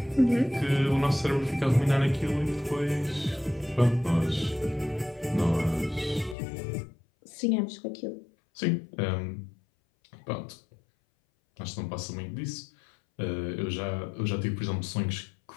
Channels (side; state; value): right; drops out; at 6.4 s